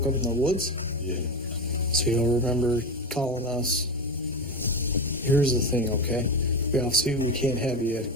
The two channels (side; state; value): both; normal; correlation 0.19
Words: up in the woods? Yeah. So you'll remember calling us. Here's the thing, okay? We obviously we can't have you